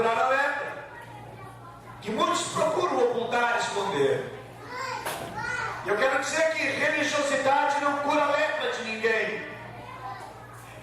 a lepra, que muitos procuram ocultar, esconder. Eu quero dizer que religiosidade não cura a lepra de ninguém.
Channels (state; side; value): identical; both; correlation 1.00